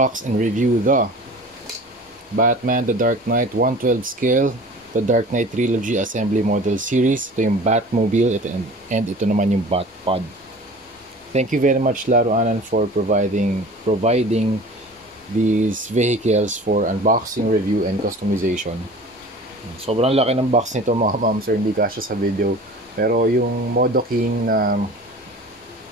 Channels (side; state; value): both; normal; correlation 0.41